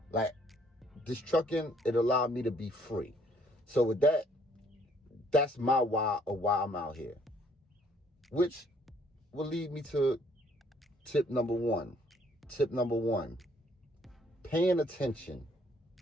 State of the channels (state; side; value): normal; both; correlation 0.63